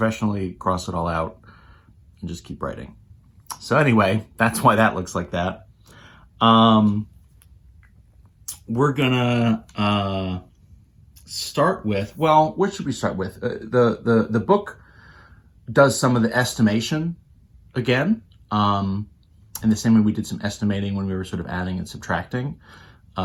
cross it all out and just keep writing. So anyway, that's why that looks like that. We're gonna start with, well, what should we start with? The book does some of the estimation again, in the same way we did some estimating when we were sort of adding and subtracting.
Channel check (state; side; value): identical; both; correlation 1.00